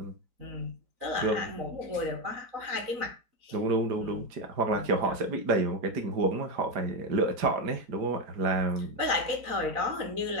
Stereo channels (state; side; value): late; left; 4.0 ms